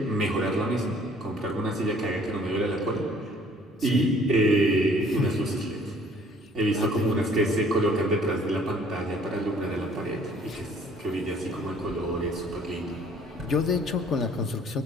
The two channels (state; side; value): normal; both; correlation 0.57